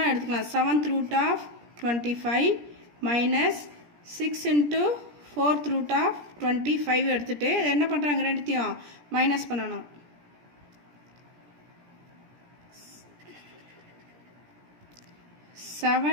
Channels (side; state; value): left; late; 17 ms